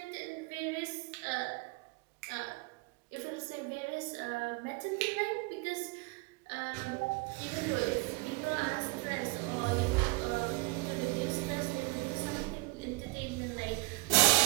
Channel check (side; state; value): left; quieter; 27.6 dB